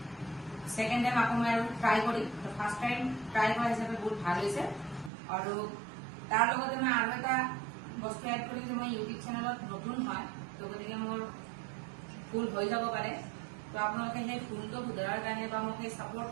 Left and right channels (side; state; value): left; drops out; at 5.1 s